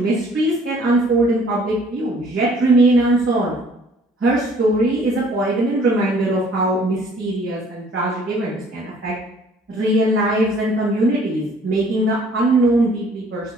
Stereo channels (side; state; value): both; normal; correlation 0.57